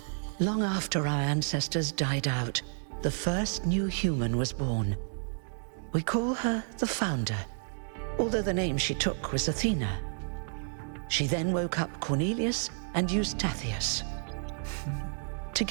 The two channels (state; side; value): silent; left; 57 dB below the other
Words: Long after our ancestors died out, the first new human was born. We call her the Founder, although the name she took was Athena. She then woke up Cornelius and Eustathius.